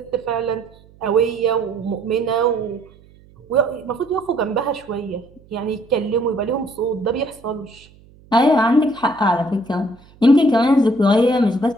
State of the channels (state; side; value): noise; right; hum, 27 dB below the sound